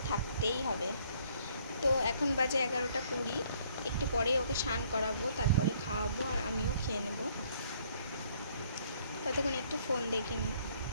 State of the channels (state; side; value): inverted; both; correlation -0.63